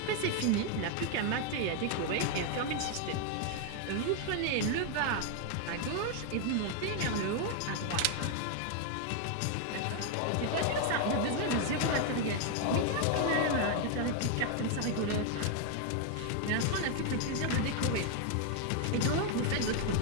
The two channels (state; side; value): different; both; correlation 0.00